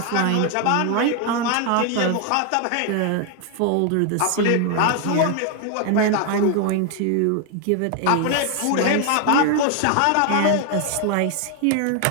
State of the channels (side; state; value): both; different; correlation 0.00